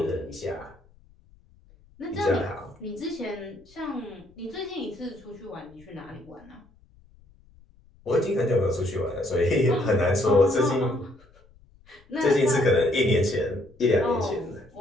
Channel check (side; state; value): left; noise; rumble, 28 dB below the sound